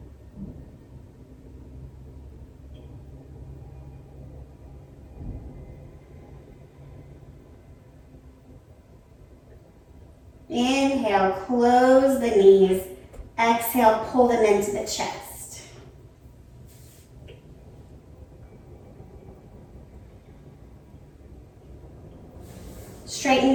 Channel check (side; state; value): both; identical; correlation 1.00